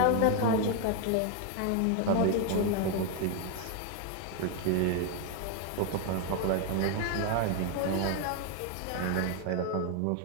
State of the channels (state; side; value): different; both; correlation 0.01